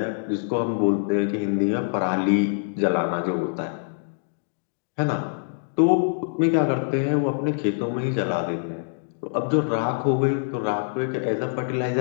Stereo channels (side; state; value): right; silent; digital silence